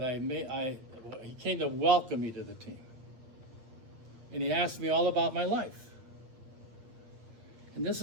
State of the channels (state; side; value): late; left; 8.6 ms